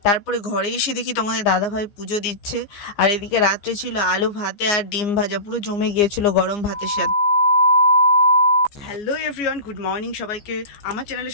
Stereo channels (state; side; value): late; right; 15 ms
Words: তারপরে ঘরে এসে দেখি তোমাদের দাদাভাই পুজো দিচ্ছে, আর এদিকে রাত্রে ছিল আলু ভাতে আর ডিম ভাজা, পুরো জমে গিয়েছিল গরম ভাতের সাথে। হ্যালো এভরিওয়ান, গুড মর্নিং সবাইকে, আমার চ্যানেলে